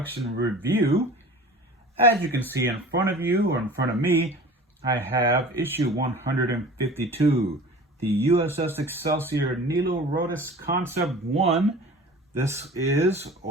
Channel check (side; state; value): both; normal; correlation 0.41